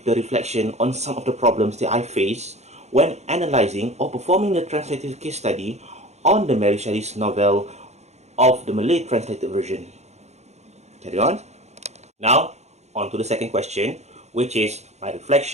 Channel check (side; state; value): left; late; 0.32 ms